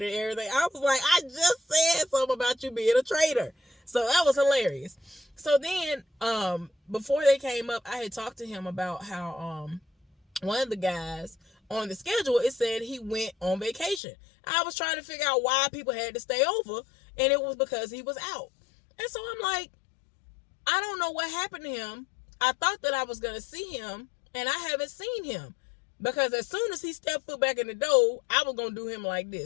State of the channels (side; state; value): right; drops out; at 14.0 s